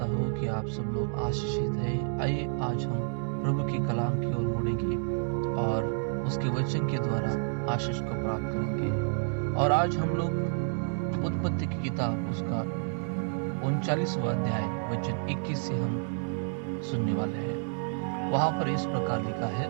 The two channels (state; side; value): silent; left; 58 dB below the other